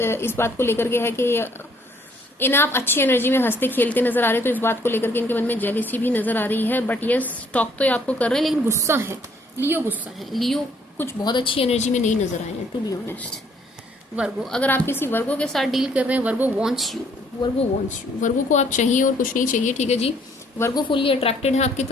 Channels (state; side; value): normal; both; correlation 0.64